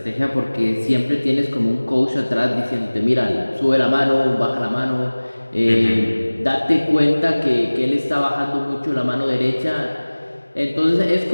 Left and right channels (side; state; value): both; inverted; correlation -1.00